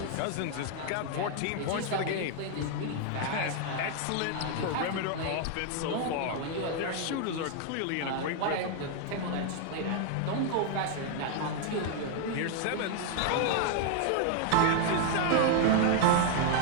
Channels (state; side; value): different; both; correlation 0.00